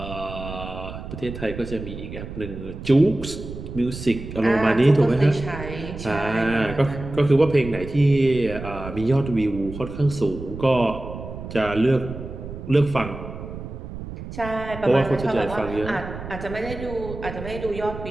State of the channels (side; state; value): right; noise; rumble, 10 dB below the sound